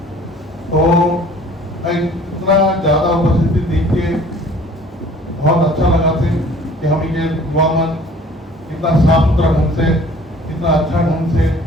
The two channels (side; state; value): both; normal; correlation 0.51